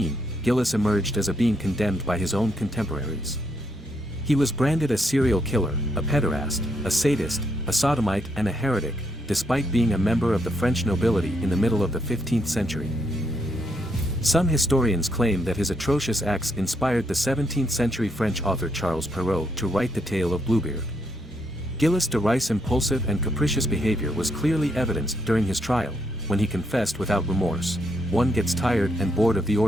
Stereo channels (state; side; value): normal; both; correlation 0.76